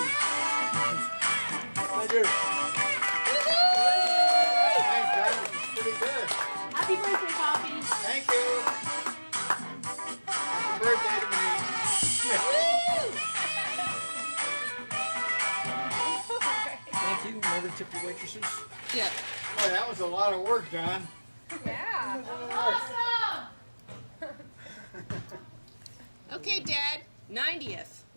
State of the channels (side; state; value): both; inverted; correlation -1.00